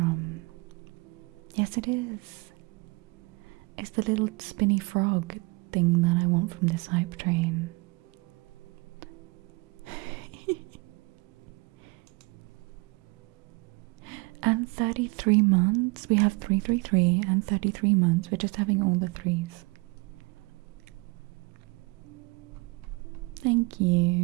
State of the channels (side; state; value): left; quieter; 27.1 dB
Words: Yes, it is. It's the little spinny frog thing that I want from this hype train. And 33 months. We have 333 and 33 months. We're just having all the threes. Thank